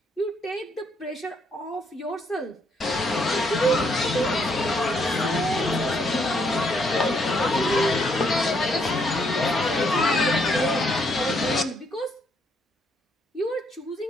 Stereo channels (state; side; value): normal; both; correlation 0.72